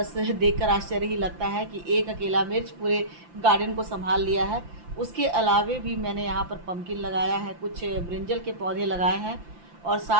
देखकर आश्चर्य ही लगता है कि एक अकेला मिर्च पूरे गार्डन को संभाल लिया है। उसके अलावे भी मैंने यहाँ पर पम्पकिन लगाया है, कुछ ब्रिंजल के पौधे लगाए हैं, और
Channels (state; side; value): late; left; 5.8 ms